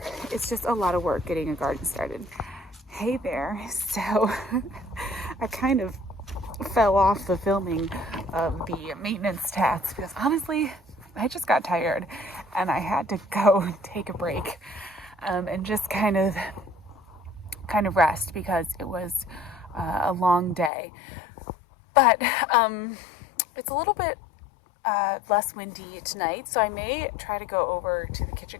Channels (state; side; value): drops out; right; at 20.7 s